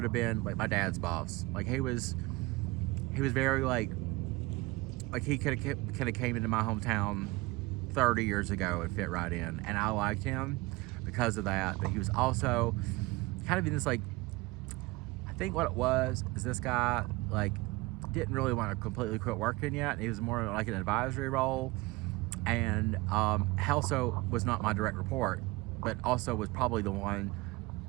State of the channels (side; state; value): left; quieter; 22.4 dB